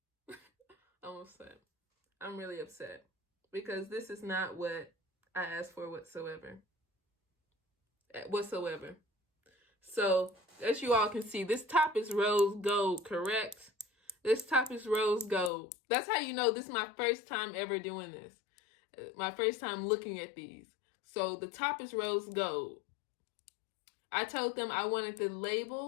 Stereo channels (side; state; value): right; drops out; at 15.5 s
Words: I'm upset. I'm really upset because this is not what I asked for whatsoever. Whatsoever. So, as you all can see, this top is rose gold, correct? This top is rose gold. That's how you know this is my first time ever doing this. My first time looking at these. So, the top is rose gold. I told them I wanted the